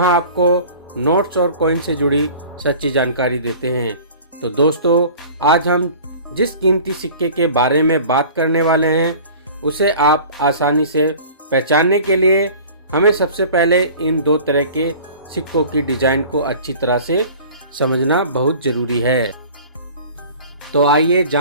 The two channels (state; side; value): inverted; both; correlation -0.43